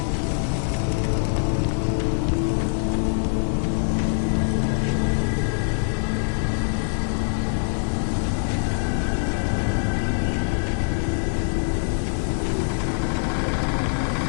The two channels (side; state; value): right; silent; 63 dB below the other